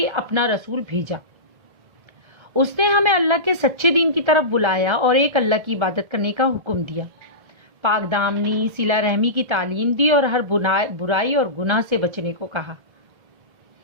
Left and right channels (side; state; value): left; late; 1.3 ms